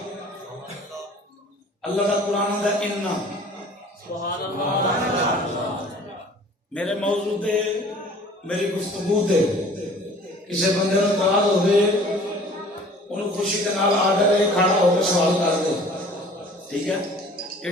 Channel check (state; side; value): normal; both; correlation 0.49